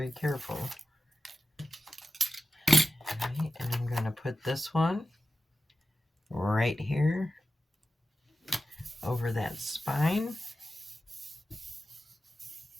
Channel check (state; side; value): normal; both; correlation 0.93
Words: careful. Alright, and I'm going to put this one right here over that spine.